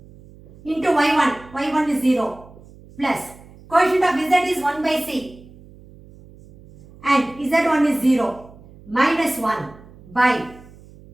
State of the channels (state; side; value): noise; right; hum, 22 dB below the sound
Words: Into y1. y1 is 0. Plus coefficient of z is 1 by c. And z1 is 0. Minus 1 by